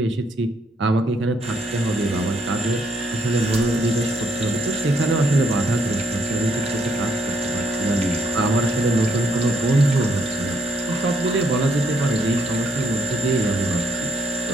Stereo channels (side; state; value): both; normal; correlation 0.73